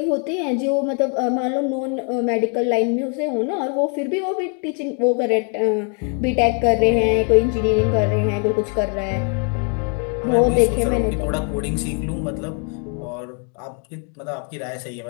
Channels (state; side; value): quieter; right; 39.2 dB